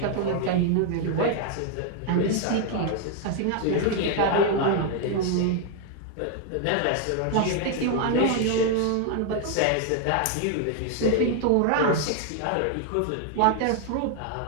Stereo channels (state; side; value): different; both; correlation 0.00